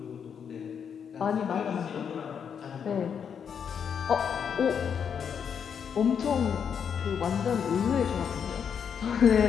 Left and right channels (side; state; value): right; quieter; 7.4 dB